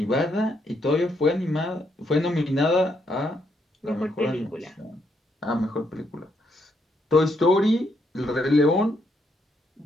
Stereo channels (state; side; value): normal; both; correlation 0.76